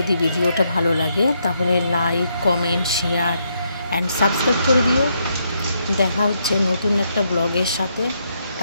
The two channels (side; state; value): both; inverted; correlation -0.77